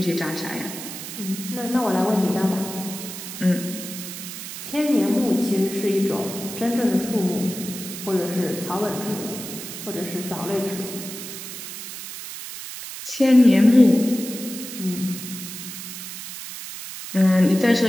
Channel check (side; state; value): right; noise; hiss, 10 dB below the sound